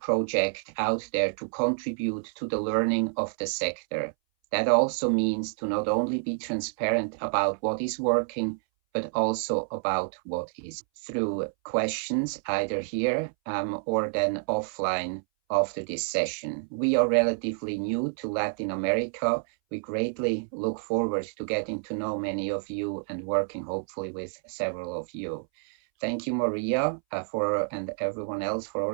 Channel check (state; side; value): silent; left; 59 dB below the other